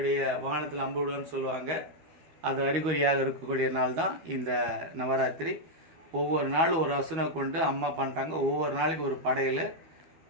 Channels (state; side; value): late; left; 12 ms